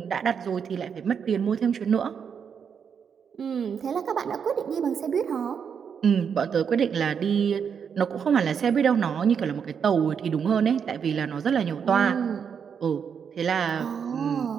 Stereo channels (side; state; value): left; quieter; 7.1 dB